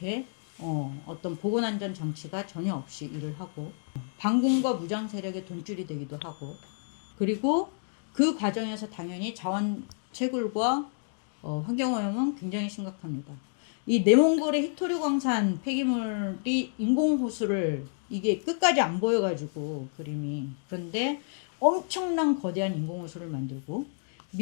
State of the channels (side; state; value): right; silent; digital silence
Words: 어떤 보건안전 장치가 전혀 없이 일을 하고 반군과 무장 세력의 돈줄이 되기도 하고 그리고 그 과정에서 당연히 자원 채굴과 환경오염은 굉장히 심각합니다. 이 내몽골의 히토류 광산 폐기물이 인공호수를 이게 끝까지 안 보여가지고 그림이 그런데 엄청난 거대한 인공호수를 만들고